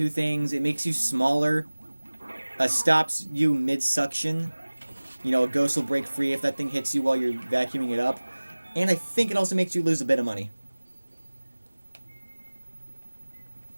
things. It makes you smaller, stops you mid-suction. You know, a ghost will break free if that thing hits you while you're vacuuming it up. And I think it also makes you lose a bit of money.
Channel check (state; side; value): inverted; both; correlation -1.00